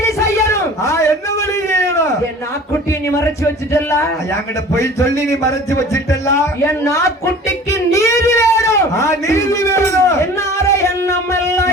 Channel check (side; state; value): both; normal; correlation 0.43